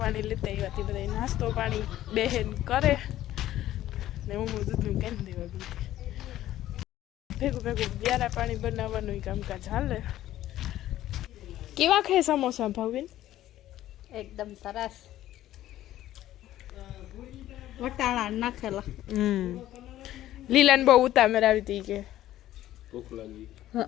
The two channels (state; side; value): quieter; right; 13.7 dB